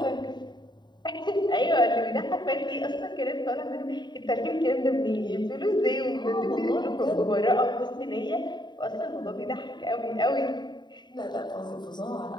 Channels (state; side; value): late; right; 0.21 ms